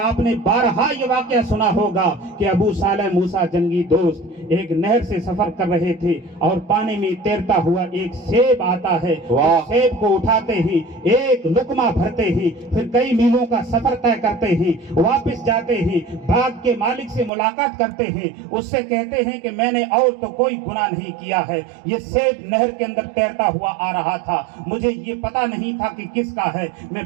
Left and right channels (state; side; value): drops out; left; at 17.3 s